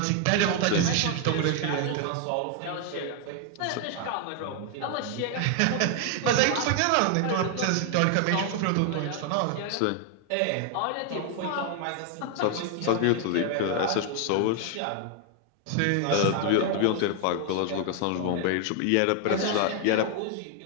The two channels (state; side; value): different; both; correlation 0.00